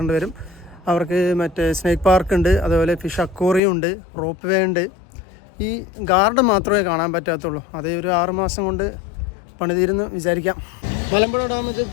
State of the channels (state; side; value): drops out; right; at 3.6 s